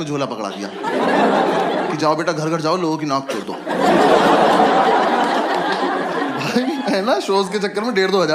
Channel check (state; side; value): identical; both; correlation 1.00